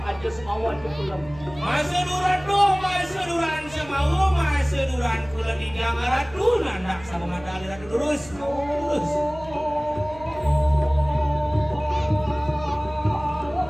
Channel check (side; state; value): right; noise; hum, 19 dB below the sound